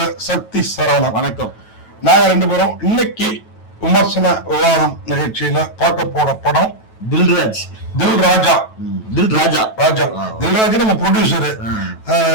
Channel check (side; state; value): right; late; 9.2 ms